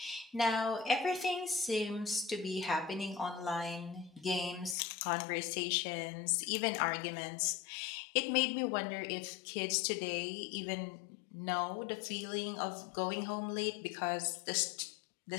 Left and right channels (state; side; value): drops out; right; at 4.8 s